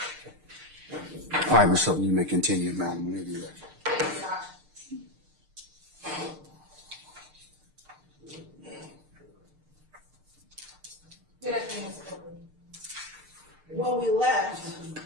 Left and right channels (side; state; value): left; late; 6.6 ms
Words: right, Ms. Hilton, you may continue, madam, whenever you're ready. Good afternoon, Mr. Courtroom. When we left,